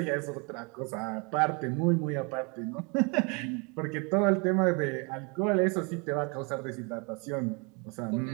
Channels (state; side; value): quieter; left; 31.7 dB